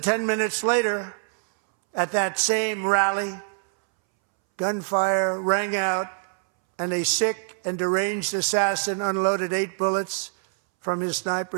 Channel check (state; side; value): silent; left; 62 dB below the other